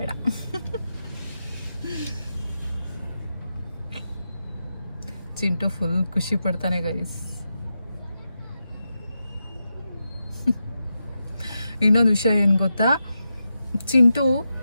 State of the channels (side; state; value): both; inverted; correlation -0.88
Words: ಚಿಂಟು ಫುಲ್ ಖುಷಿ ಪಡ್ತಾನೆ ಗೈಸ್. ಇನ್ನೊಂದು ವಿಷಯ ಏನು ಗೊತ್ತಾ, ಚಿಂಟು